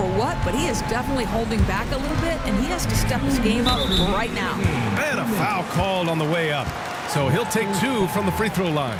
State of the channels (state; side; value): identical; both; correlation 1.00